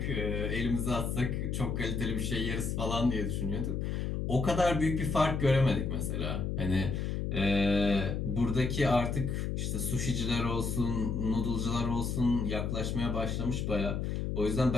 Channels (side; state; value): left; noise; hum, 1 dB below the sound